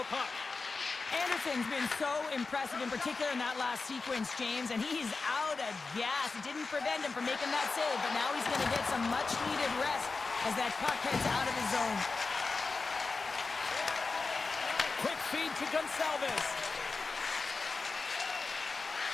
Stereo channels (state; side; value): quieter; right; 4.1 dB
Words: puck. Anderson's been so impressive, in particular in that last sequence, James, and he's out of gas. It didn't prevent him from making that save, but now he's going to get some much-needed rest as that puck heads out of his zone. Quick feed to Gonçalves.